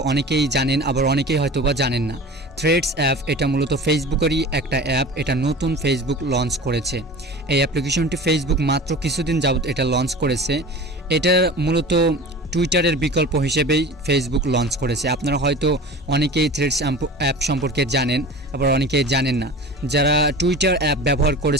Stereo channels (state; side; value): normal; both; correlation 0.37